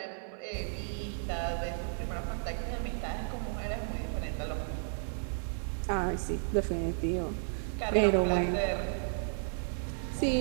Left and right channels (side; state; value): left; silent; digital silence